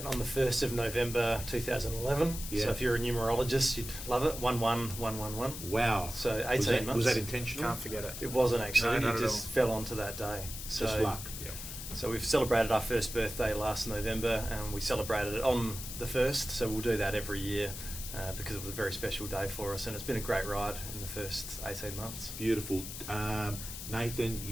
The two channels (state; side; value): noise; left; hiss, 9 dB below the sound